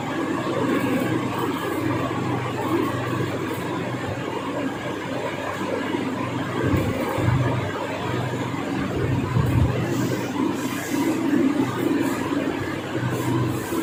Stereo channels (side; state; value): both; identical; correlation 1.00